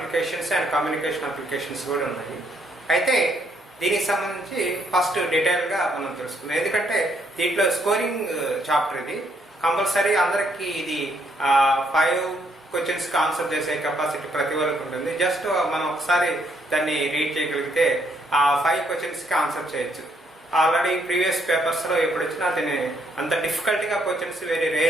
and communication applications కూడా ఉన్నాయి. అయితే దీనికి సంబంధించి ఫస్ట్ డీటెయిల్గా మనం తెలుసుకుందాం. ఎందుకంటే దీంట్లో స్కోరింగ్ చాప్టర్ ఇది కంపల్సరీ అందరికీ ఇది 5 క్వశ్చన్స్కి ఆన్సర్ చేసే కెపాసిటీ ప్రతి ఒక్కరికి ఉంటుంది. జస్ట్ మనం ఒకసారి దాన్ని రీడ్ చేయగలిగితే ఆ 5 క్వశ్చన్స్కి ఆన్సర్ చేయొచ్చు. ఆల్రెడీ ప్రీవియస్ పేపర్స్లో ఎప్పుడు వచ్చినా దీన్ని అంత డిఫికల్ట్గా క్వశ్చన్స్ వెరీ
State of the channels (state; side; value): normal; both; correlation 0.71